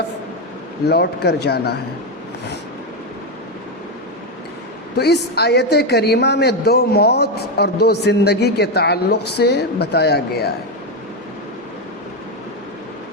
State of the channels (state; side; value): normal; both; correlation 0.08